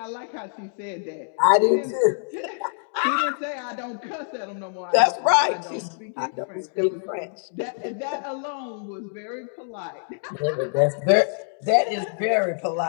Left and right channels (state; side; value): silent; right; digital silence